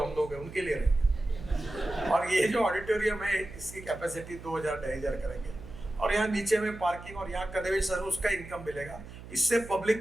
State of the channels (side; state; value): right; noise; hum, 15 dB below the sound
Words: हम लोग हैं उनके लिए रहेंगे। और ये जो ऑडिटोरियम है इसकी कैपेसिटी 2,000-2,500 करेंगे, और यहाँ नीचे में पार्किंग और यहाँ कन्वेंशन, उसका इनकम मिलेगा। इससे